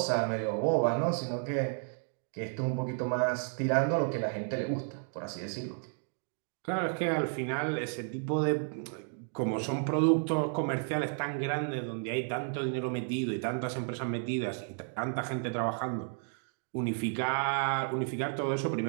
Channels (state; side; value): silent; left; 55 dB below the other